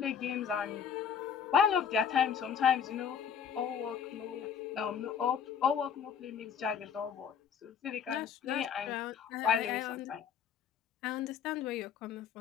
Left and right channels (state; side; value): quieter; right; 7.6 dB